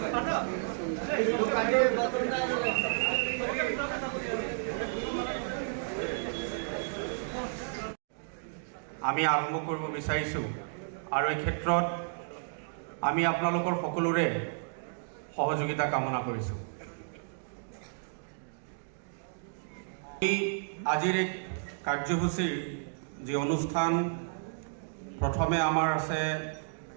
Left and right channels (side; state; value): left; silent; digital silence